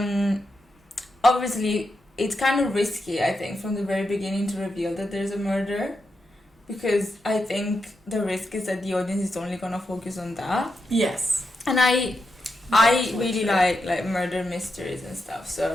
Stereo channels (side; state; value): both; normal; correlation 0.86